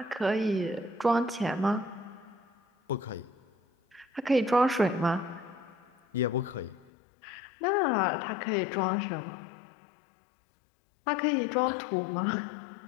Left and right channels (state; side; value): drops out; right; at 6.9 s